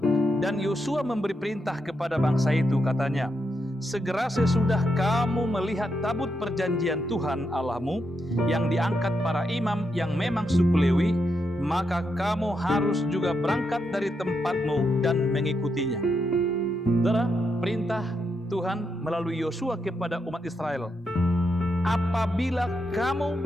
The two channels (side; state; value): both; normal; correlation 0.82